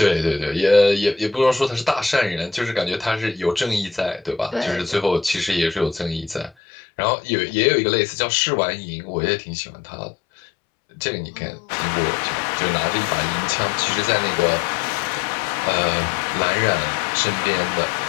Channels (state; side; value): drops out; right; at 6.6 s